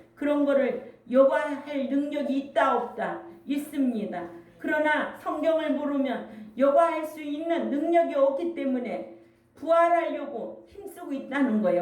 그런 거를 여과할 능력이 있다 없다 있습니다. 그러나 성경을 모르면 여과할 수 있는 능력이 없기 때문에 부활하려고 힘쓰고 있다는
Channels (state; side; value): identical; both; correlation 1.00